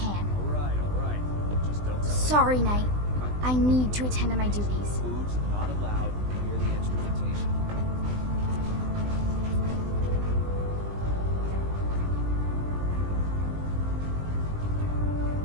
Alright. Just don't tell Sorry, Knight. I need to attend to my duties. Foods not allowed near the instrumentation.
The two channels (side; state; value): left; late; 20 ms